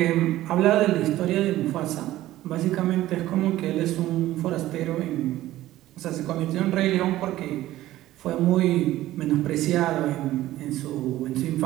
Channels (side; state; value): left; quieter; 15.1 dB